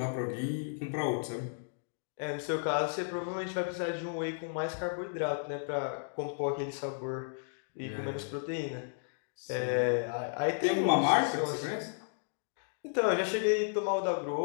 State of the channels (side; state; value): right; silent; digital silence